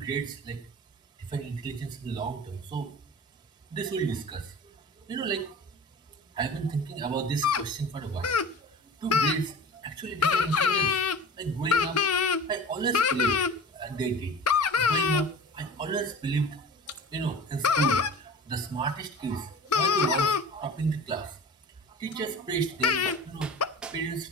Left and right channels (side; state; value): both; normal; correlation 0.38